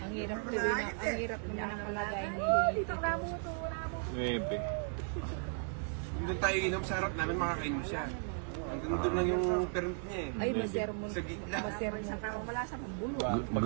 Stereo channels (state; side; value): silent; left; 54 dB below the other